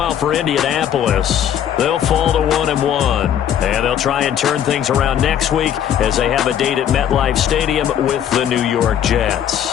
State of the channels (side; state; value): right; quieter; 9.8 dB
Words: for Indianapolis, they'll fall to 1-1. And they'll try and turn things around next week as they have a date at MetLife Stadium with the New York